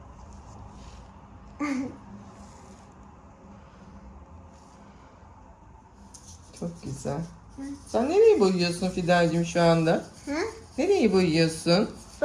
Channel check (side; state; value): both; identical; correlation 1.00